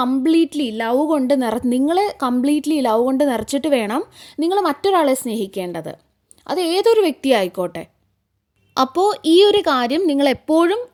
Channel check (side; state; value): both; identical; correlation 1.00